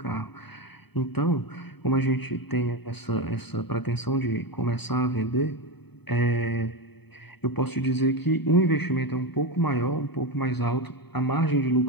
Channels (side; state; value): right; late; 0.98 ms